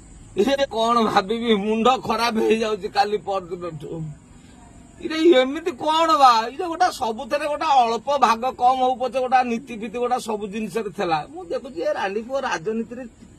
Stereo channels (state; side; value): identical; both; correlation 1.00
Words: कौन भाभी मुंड खराब हो जाऊँ काली परदिन इरे एमती कौन बा ये गोटा सबुथे गोटा अल्प भाग कम हो पचे गोटा नीति फीति गोटा सब जिन देखुची रानीपुर राजनीति